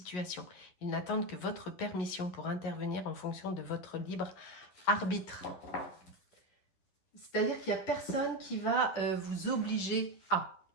Ils n'attendent que votre permission pour intervenir en fonction de votre libre arbitre. C'est-à-dire qu'il n'y a personne qui va vous obliger à.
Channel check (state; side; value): late; right; 11 ms